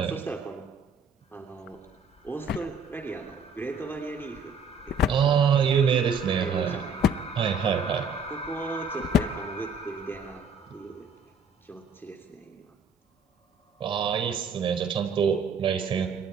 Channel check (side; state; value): left; quieter; 3.7 dB